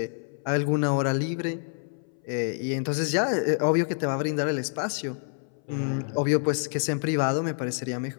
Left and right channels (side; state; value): right; silent; 60 dB below the other